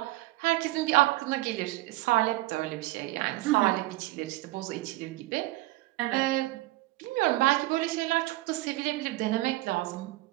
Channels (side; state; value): left; quieter; 19.0 dB